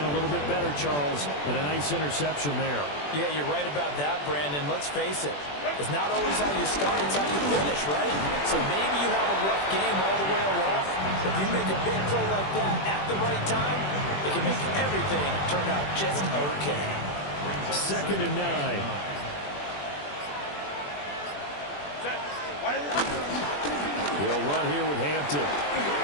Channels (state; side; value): late; right; 21 ms